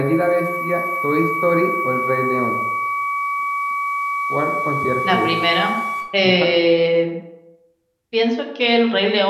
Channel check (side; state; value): both; identical; correlation 1.00